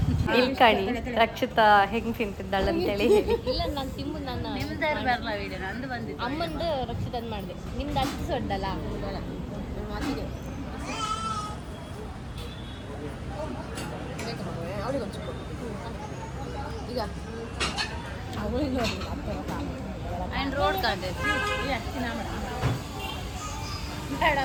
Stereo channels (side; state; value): both; identical; correlation 1.00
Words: ಇಲ್ಕಣಿ ರಕ್ಷಿತಾ ಹೆಂಗೆ ತಿಂತಿದ್ದಾಳೆ ಅಂತೇಳಿ ಹೇಳಿ. ಇಲ್ಲ ನಾನು ತಿಂಬು ನಾನು ಅಮ್ಮಂದು ರಕ್ಷಿತಂದು ಮಾಡಿದೆ. ನಿಮ್ದು ಅಷ್ಟು ಸೊಡ್ಡಲ್ಲ ಈಗ ಆ್ಯಂಡ್ ರೋಡ್ ಕಾಂಡೆ